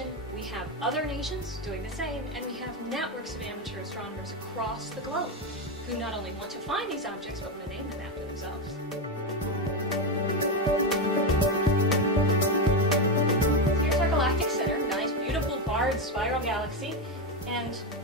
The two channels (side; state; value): both; normal; correlation 0.11